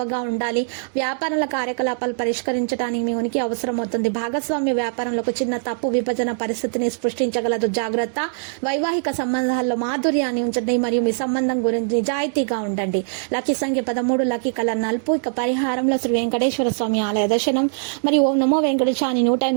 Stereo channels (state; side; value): silent; left; 64 dB below the other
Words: ఉండాలి. వ్యాపారాల కార్యకలాపాలు పరిష్కరించడానికి మీ ఉనికి అవసరం అవుతుంది. భాగస్వామ్య వ్యాపారంలో ఒక చిన్న తప్పు విభజన పరిస్థితిని సృష్టించగలదు. జాగ్రత్త. వైవాహిక సంబంధాల్లో మాధుర్యాన్ని ఉంచండి మరియు మీ సంబంధం గురించి నిజాయితీగా ఉండండి. లక్కీ సంఖ్య 13, లక్కీ కలర్ నలుపు. ఇక పరిహారంలో శ్రీ వెంకటేశ్వర స్వామి ఆలయ దర్శనం మరియు ఓం నమో వెంకటేశాన్ని